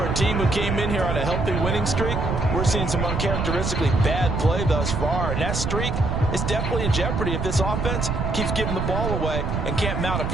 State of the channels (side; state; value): right; noise; rumble, 2 dB below the sound